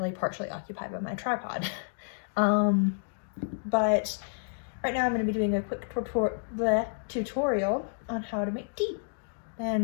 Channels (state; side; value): silent; right; digital silence